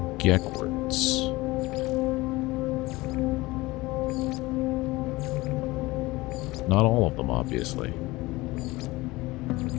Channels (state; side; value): quieter; right; 20.8 dB